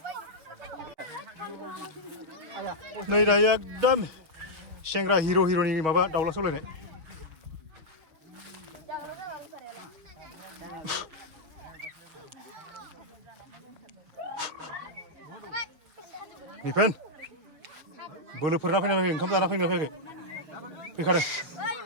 नै दायो एकदम सेंग्रा हिर'नि माबा दाउला सौलायनाय निफेन बोलोफोरना फैना फैयाखै ओंखाम जाना फैना फैयाखै फैखादों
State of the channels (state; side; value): late; left; 6.6 ms